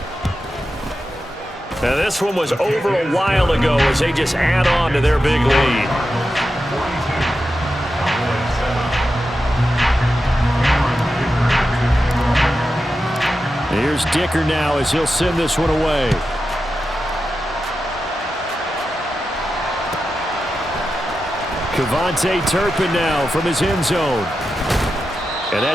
Now this one was over a while ago as they just add on to their big lead. Here's Dicker now as he'll send this one away. Cavante Turpin now from his end zone. And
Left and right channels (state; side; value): normal; both; correlation 0.90